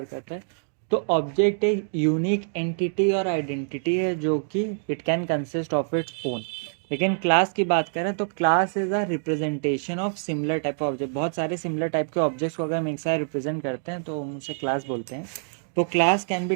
करते हैं तो ऑब्जेक्ट एक यूनिक एंटिटी और आइडेंटिटी है जो कि it can consist of its own. लेकिन क्लास की बात करें तो class is a representation of similar type of object. बहुत सारे सिमिलर टाइप के ऑब्जेक्ट्स को अगर हम एक साथ रिप्रेजेंट करते हैं तो हम उसे क्लास बोलते हैं। तो class can be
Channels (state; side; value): silent; left; digital silence